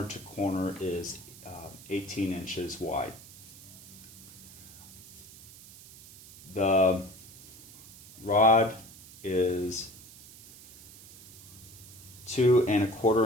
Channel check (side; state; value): right; noise; hiss, 19 dB below the sound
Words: to corner is 18 inches wide. The rod is 2